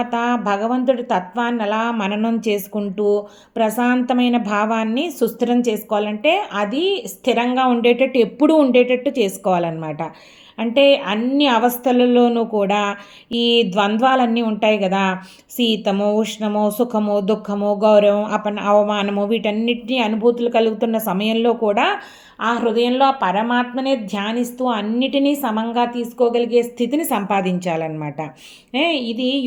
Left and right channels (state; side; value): identical; both; correlation 1.00